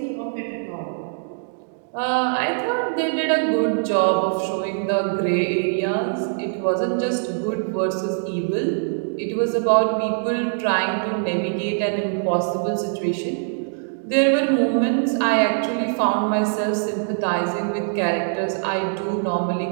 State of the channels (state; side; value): silent; left; digital silence